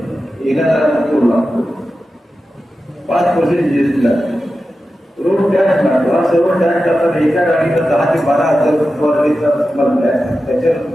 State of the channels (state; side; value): normal; both; correlation 0.92